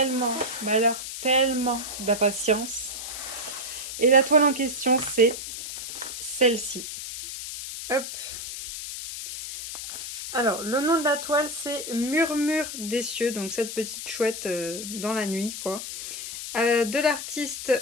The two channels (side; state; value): left; noise; hiss, 8 dB below the sound